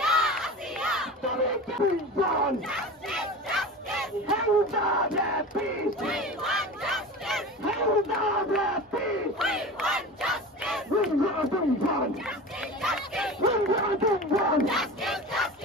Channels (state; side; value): normal; both; correlation 0.32